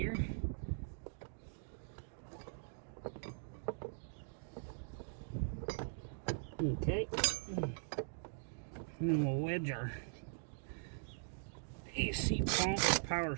Okay. And then we'll wedge our AC pump power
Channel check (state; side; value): silent; left; digital silence